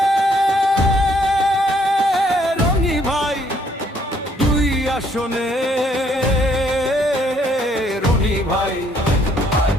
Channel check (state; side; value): normal; both; correlation 0.67